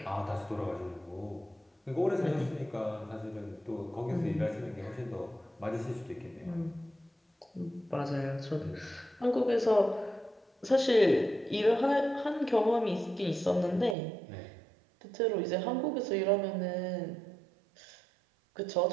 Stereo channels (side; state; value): left; drops out; at 14.0 s